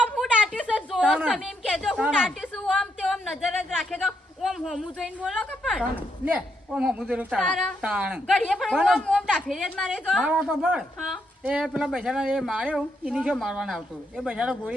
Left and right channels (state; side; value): normal; both; correlation 0.78